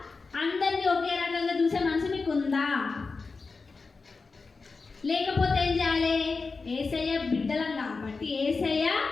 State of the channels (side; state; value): right; quieter; 4.3 dB